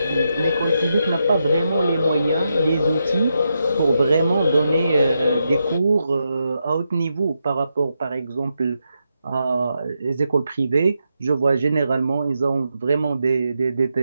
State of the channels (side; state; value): both; inverted; correlation -0.84